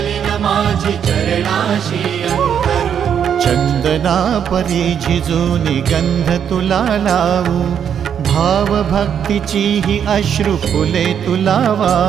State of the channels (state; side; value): quieter; left; 8.4 dB